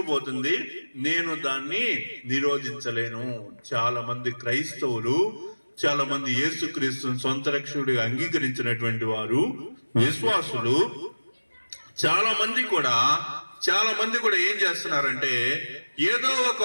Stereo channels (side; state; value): both; inverted; correlation -1.00